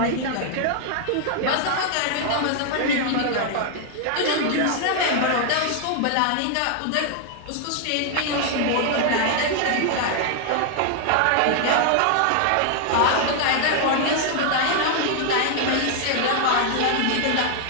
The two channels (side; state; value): both; different; correlation 0.00